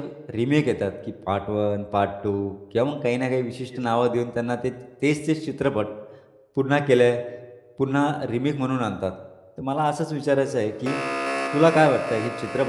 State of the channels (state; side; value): identical; both; correlation 1.00